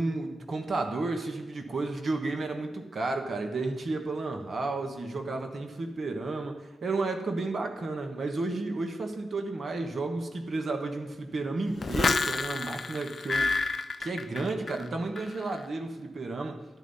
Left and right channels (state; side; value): normal; both; correlation 0.87